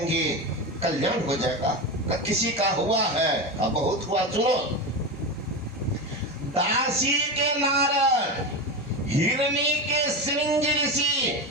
कल्याण हो जाएगा। किसी का हुआ है, अब बहुत हुआ। सुनो, दासी के नारद, हिरणी के श्रृंग ऋषि,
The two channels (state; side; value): normal; both; correlation 0.20